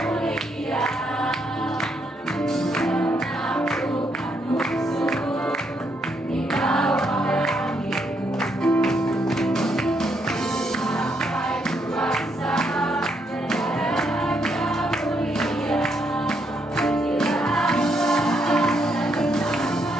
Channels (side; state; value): both; normal; correlation 0.76